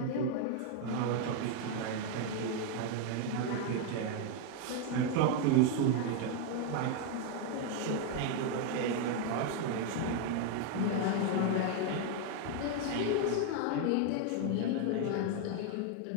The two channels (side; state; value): both; different; correlation 0.01